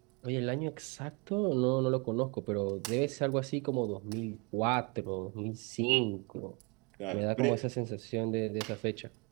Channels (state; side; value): quieter; left; 31.1 dB